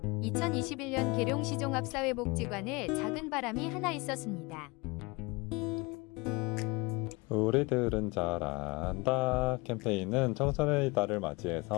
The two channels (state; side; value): quieter; right; 25.6 dB